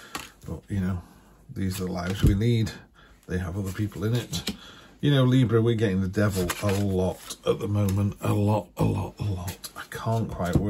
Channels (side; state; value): both; identical; correlation 1.00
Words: But, you know, these are the lives we lead. They have other people in it. You know, Libra, we're getting the devil a lot at the moment. A lot. I can't quite